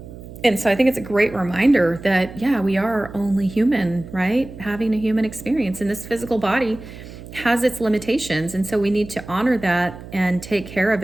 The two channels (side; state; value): right; noise; hum, 15 dB below the sound